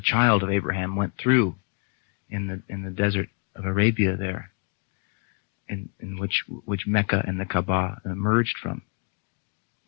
child of Abraham went through in the desert of Arabia there, in which Mecca and the Kaaba emerged from.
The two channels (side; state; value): right; quieter; 36.8 dB